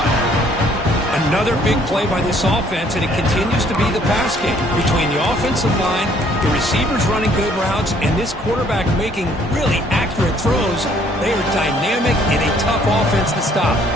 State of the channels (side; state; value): both; normal; correlation 0.62